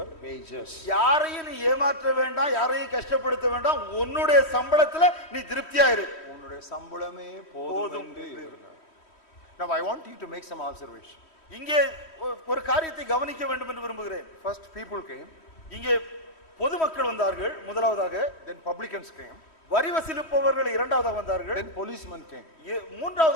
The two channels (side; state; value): right; late; 3.1 ms